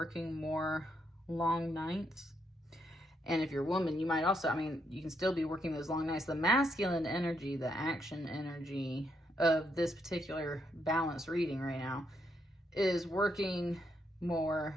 more long nights. And if you're a woman, you might also, I mean, you can still be working those long nights. The masculine energy, the action energy of this particular balance reading right now is working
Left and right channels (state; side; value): normal; both; correlation 0.77